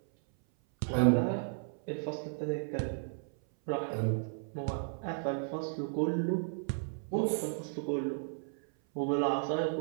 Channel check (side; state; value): left; silent; 55 dB below the other